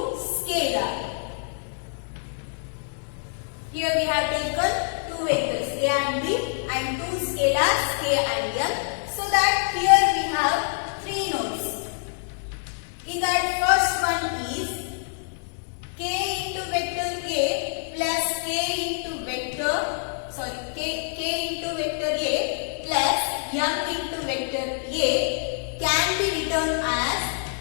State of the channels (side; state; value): right; silent; digital silence